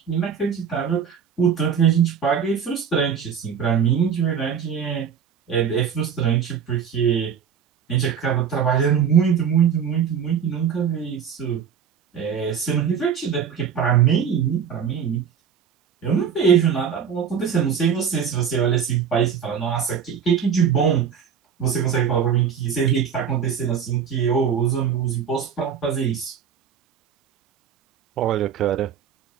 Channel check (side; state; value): left; quieter; 7.5 dB